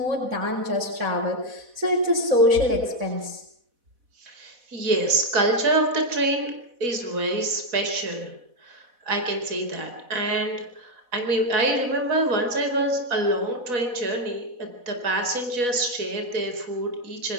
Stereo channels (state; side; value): late; left; 4.1 ms